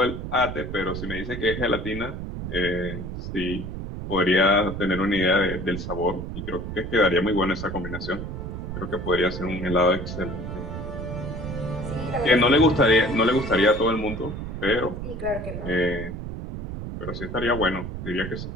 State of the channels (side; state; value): right; noise; rumble, 6 dB below the sound